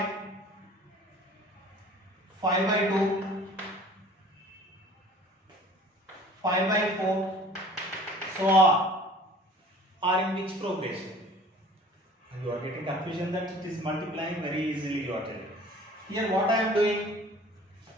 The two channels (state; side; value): normal; both; correlation 0.48